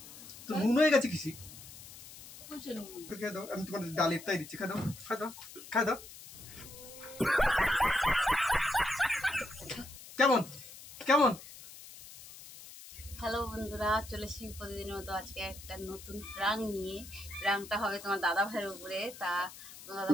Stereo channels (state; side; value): noise; left; hiss, 16 dB below the sound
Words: তো নুন হয়ে গেছে কিসি খেয়ে দাও। আমি তোমার ডালের তাই দিচ্ছি, খাই দাও খাই দাও খাই দাও। কেমন কেমন? হ্যালো বন্ধুরা, চলে এসেছি প্রতিদিনের মতো আজকে একটা নতুন প্রাং নিয়ে। প্রাংটা হবে তোমার দাদা ভাইয়ের উপরে। তা তোমার দাদা